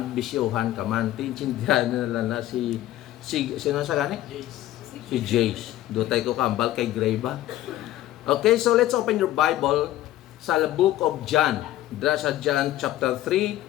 bisyuhan ka man. Tinsindihan nila na sino sa gani? Si Jace. Dutay ko kambal kay Greba. Okay, so let's open your Bible sa book of John. Dra sa John chapter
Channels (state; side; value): quieter; right; 14.4 dB